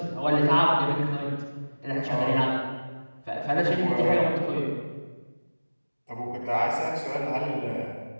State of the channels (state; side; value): inverted; both; correlation -1.00